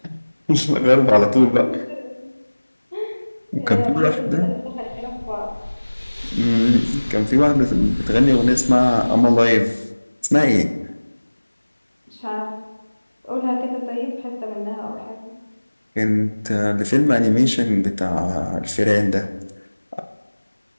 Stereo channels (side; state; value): both; inverted; correlation -1.00